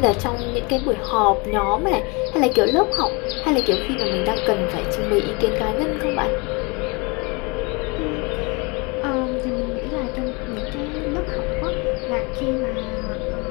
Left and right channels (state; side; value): quieter; right; 28.8 dB